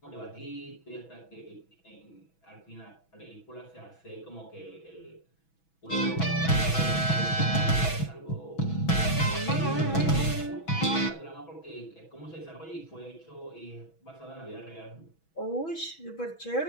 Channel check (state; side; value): late; right; 6.1 ms